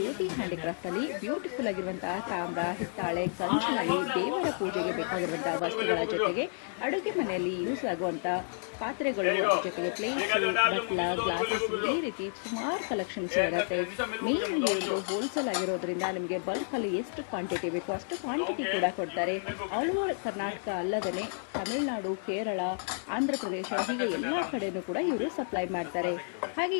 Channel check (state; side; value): silent; right; 57 dB below the other